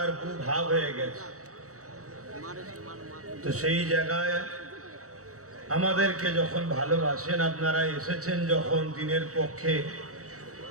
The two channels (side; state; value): left; late; 0.65 ms